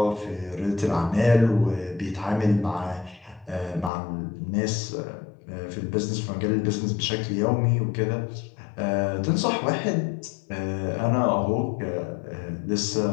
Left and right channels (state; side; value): drops out; right; at 3.9 s